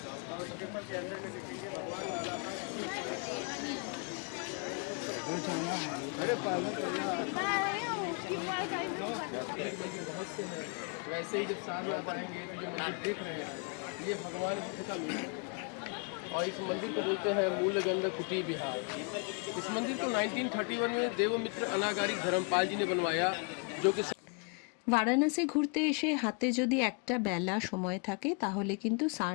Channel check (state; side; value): quieter; right; 36.8 dB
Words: वैसे ही जब सारनाथ आएंगे तो जो मंदिर देख रहे हैं ये भगवान बुद्ध का मंदिर है और इस मंदिर को बोलते हैं मूलगंध कुटी विहार। इस मंदिर को 1931 में देवमित्र अनागारी धर्मपाल जी ने बनवाया, जो कि বারাণসী ঘুরতে এসে হাতে যদি একটা বেলা সময় থাকে তাহলে কিন্তু